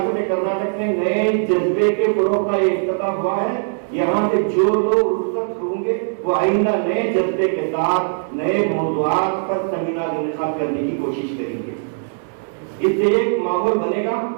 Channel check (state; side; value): silent; left; digital silence